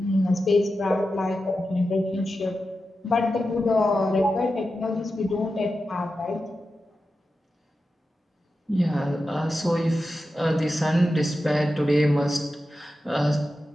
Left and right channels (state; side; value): normal; both; correlation 0.91